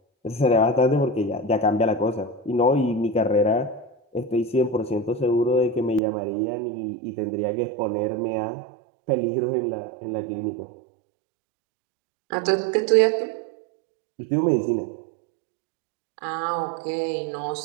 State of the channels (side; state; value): left; drops out; at 6.0 s